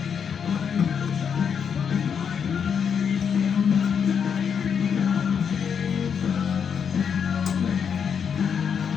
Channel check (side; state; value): right; quieter; 7.1 dB